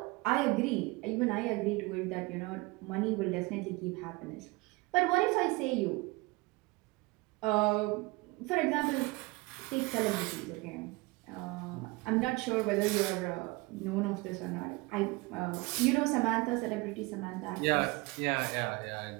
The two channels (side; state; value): left; quieter; 24.1 dB